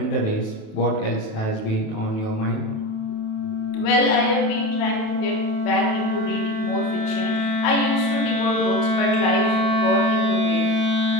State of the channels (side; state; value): right; late; 28 ms